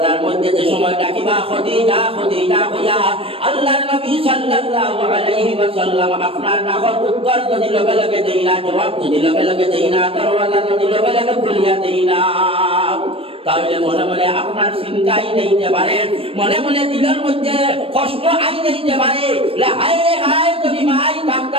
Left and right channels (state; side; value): late; left; 0.27 ms